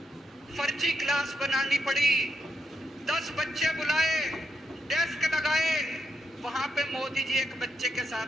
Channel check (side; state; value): both; normal; correlation 0.80